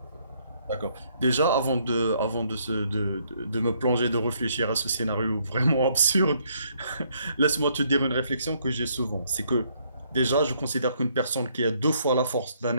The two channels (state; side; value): inverted; both; correlation -0.70